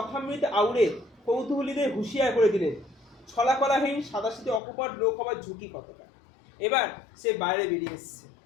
আউড়ে কৌতূহলীদের হুঁশিয়ার করে দিলেন ছলাকলাহীন সাদাসিধে অকপট লোক হবার ঝুঁকি কতটা। এবার সে বাইরে বেরিয়ে এসছে,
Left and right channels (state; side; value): drops out; right; at 4.6 s